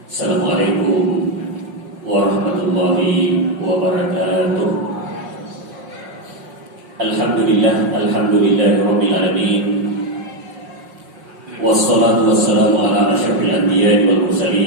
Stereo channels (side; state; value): left; late; 5.5 ms